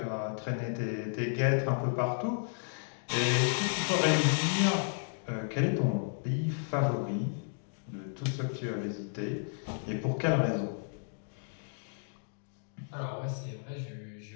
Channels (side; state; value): right; silent; digital silence